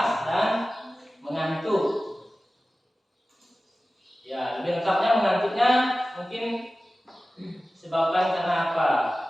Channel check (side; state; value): both; normal; correlation 0.96